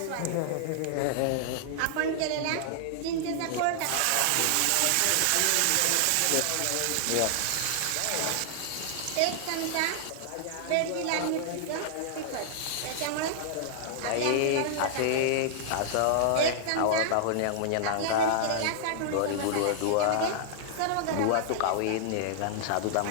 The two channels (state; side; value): different; both; correlation -0.01